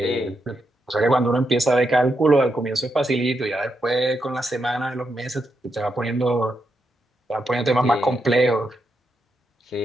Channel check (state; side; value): normal; both; correlation 0.83